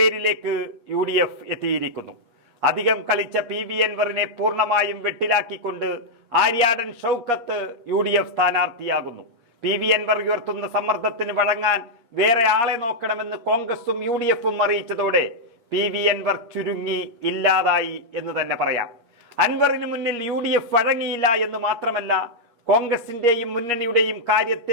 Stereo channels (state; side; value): late; left; 8.5 ms